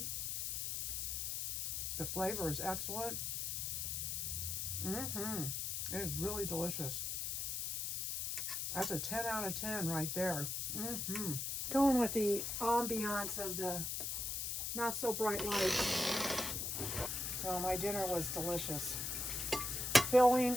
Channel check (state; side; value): noise; left; hiss, 1 dB below the sound